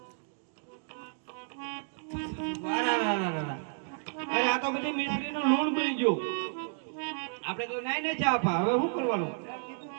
વાહ, ના, ના, ના, ના. અરે આ તો બધી મિશ્રીનું લૂણ બની ગયું આપણે તો નાઈ ને ચા પા હવે શું કરવાનું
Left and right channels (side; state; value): left; silent; digital silence